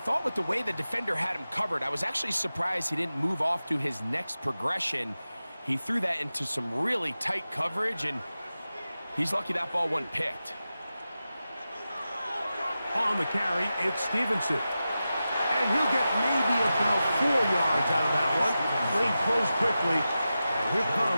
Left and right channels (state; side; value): inverted; both; correlation -0.93